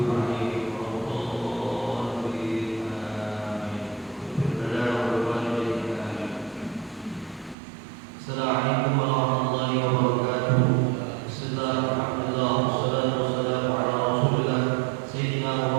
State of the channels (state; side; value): drops out; left; at 7.6 s